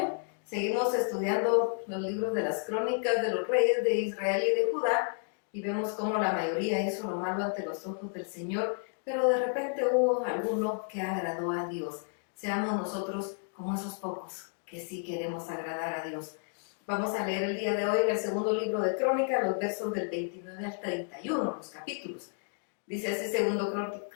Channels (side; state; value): right; silent; 57 dB below the other